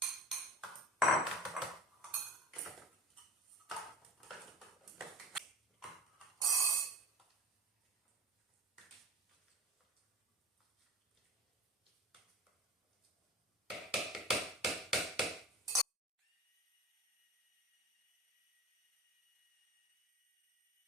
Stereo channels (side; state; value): both; normal; correlation 0.37